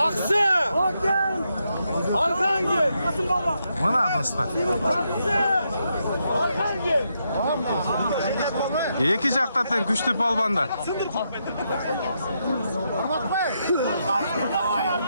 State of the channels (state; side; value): inverted; both; correlation -0.81